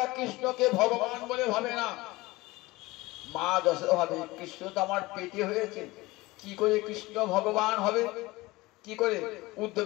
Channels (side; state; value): right; quieter; 20.8 dB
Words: কৃষ্ণকে ভগবান বলে ভাবে না। মা যশোদা ভাবে কৃষ্ণ তো আমার পেটে হয়েছে, কি করে কৃষ্ণ ভগবান হবে, কি করে?